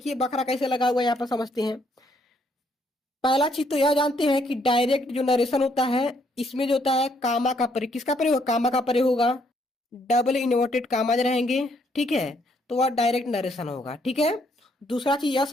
बखरा कैसे लगा हुआ है, यहाँ पर समझते हैं। पहला चीज तो यह जानते हैं कि डायरेक्ट जो नरेशन होता है, इसमें जो होता है कामा का प्रयोग। किसका प्रयोग होगा? कामा का प्रयोग होगा। डबल इन्वर्टेड कामाज रहेंगे। ठीक है, तो वह डायरेक्ट नरेशन होगा। ठीक है, दूसरा चीज यह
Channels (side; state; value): both; normal; correlation 0.70